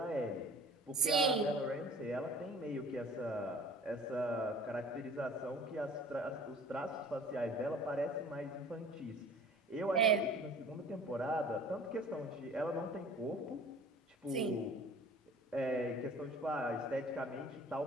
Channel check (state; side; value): normal; both; correlation 0.46